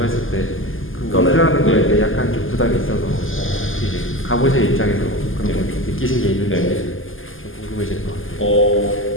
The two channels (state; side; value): late; right; 0.59 ms